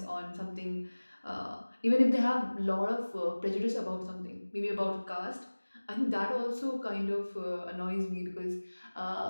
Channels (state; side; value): inverted; both; correlation -1.00